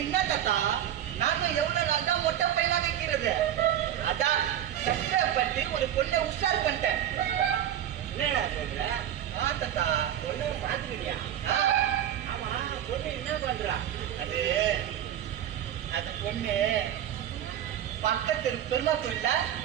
என்ன தாத்தா, நானும் எவ்வளவு நாள் தான் மொட்டை பையனா வைக்கிறது. அதான் கஷ்டப்பட்டு ஒரு பொண்ணை உஷார் பண்ணிட்டேன். என்னடா சொல்ற? தாத்தா பொண்ணு பாத்துக்கிட்டியா? ஆமா, பொண்ணு என்ன பண்றா? அது அந்த பொண்ணு பக்கத்து பெருமா கோயில்ல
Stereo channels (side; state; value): left; quieter; 10.8 dB